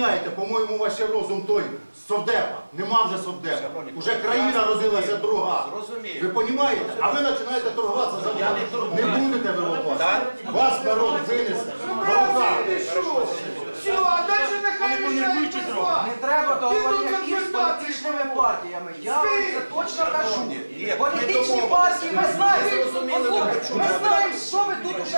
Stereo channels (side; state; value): both; inverted; correlation -1.00